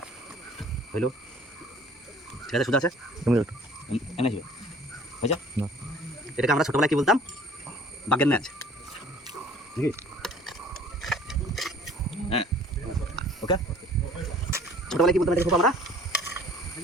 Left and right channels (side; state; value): both; normal; correlation 0.52